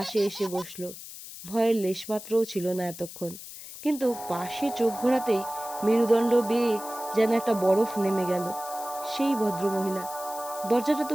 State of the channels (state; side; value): noise; left; hiss, 13 dB below the sound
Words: এসে বসলো। ভয়ের লেশমাত্রও ছিল না এতক্ষণ, কিন্তু পাশে চোখ ঘোরাতেই মেরুদণ্ড বেয়ে যেন একটা বরফ নেমে গেল। সেই ভদ্রমহিলা। দরজাটা